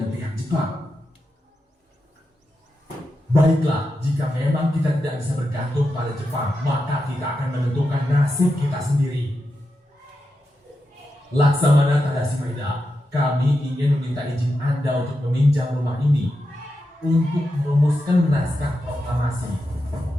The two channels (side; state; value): both; normal; correlation 0.88